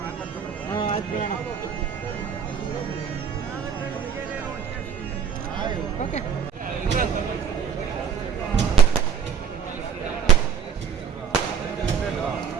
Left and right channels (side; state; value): left; quieter; 7.3 dB